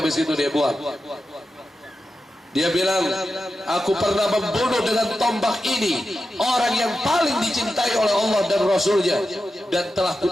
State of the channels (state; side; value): normal; both; correlation 0.91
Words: itu dia buang. Dia bilang, aku pernah membunuh dengan tombak ini orang yang paling dicintai oleh Allah dan Rasulnya, dan telah